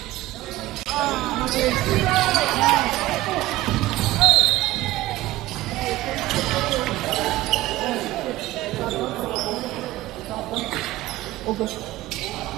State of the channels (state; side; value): quieter; left; 17.1 dB